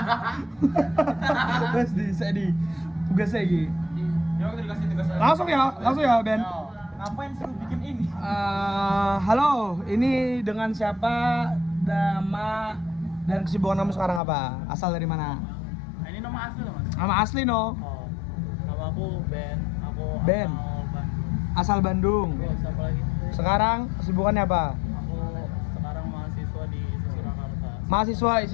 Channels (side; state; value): right; drops out; at 14.2 s